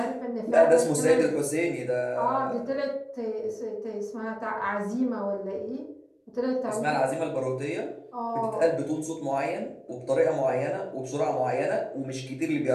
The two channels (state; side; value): identical; both; correlation 1.00